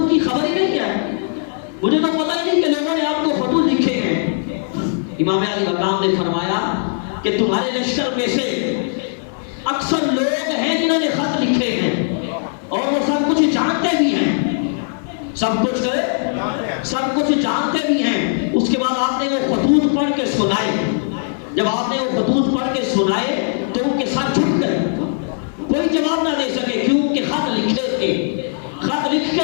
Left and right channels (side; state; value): right; silent; digital silence